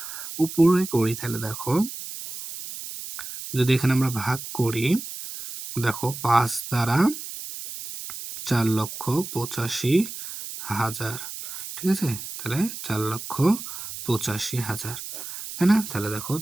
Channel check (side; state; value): right; noise; hiss, 9 dB below the sound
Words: উপরে করি, তাহলে দেখো যদি এখানে আমরা ভাগ করি, দেখো ৫ দ্বারা ৪,৮৫,০০০, ঠিক আছে? তাহলে ৪,৮৫,০০০, তাই না? তাহলে দেখো